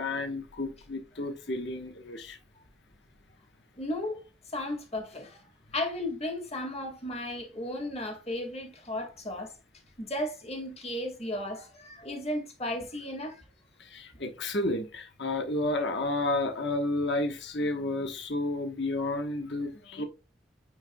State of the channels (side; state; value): both; normal; correlation 0.35